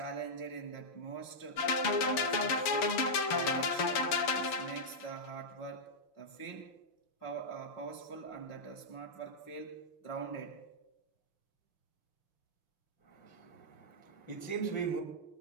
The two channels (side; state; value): right; late; 6.8 ms